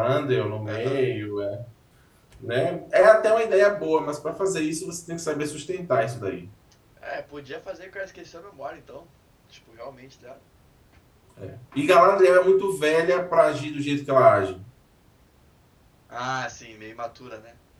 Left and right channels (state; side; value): identical; both; correlation 1.00